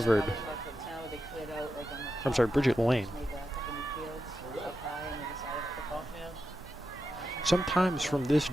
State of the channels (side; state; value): both; normal; correlation 0.88